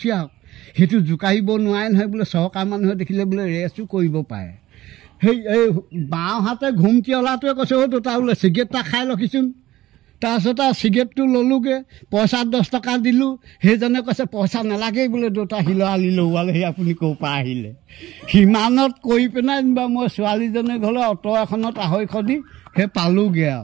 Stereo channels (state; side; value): quieter; left; 15.6 dB